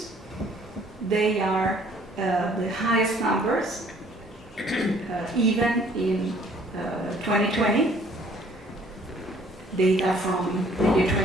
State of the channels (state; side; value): normal; both; correlation 0.58